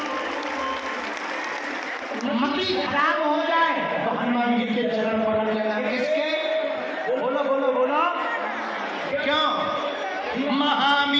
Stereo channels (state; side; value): identical; both; correlation 1.00